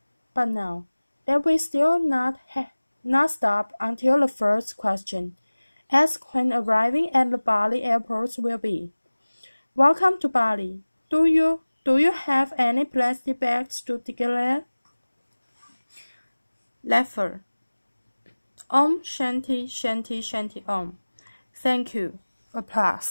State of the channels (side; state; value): both; inverted; correlation -1.00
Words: But now, that we still not stop until the first question, asked when arriving at the Bali airport will be. Welcome to Bali. Do you have any plastic bags to declare? Laughter. Om Shanti Shanti Shanti Om. Thank you.